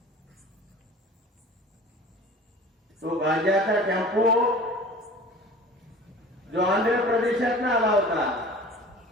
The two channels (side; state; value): both; normal; correlation 0.41